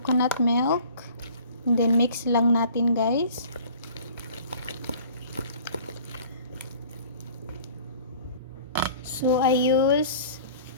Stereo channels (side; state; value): both; inverted; correlation -0.48